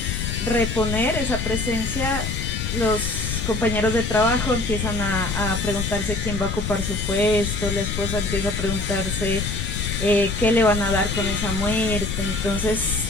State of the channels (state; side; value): noise; left; rumble, 3 dB below the sound